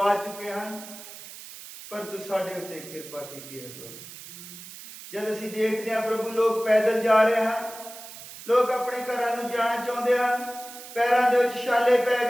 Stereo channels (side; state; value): right; noise; hiss, 14 dB below the sound